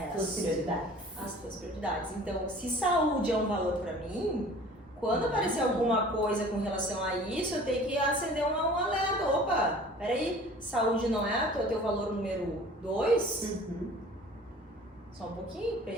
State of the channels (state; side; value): normal; both; correlation 0.46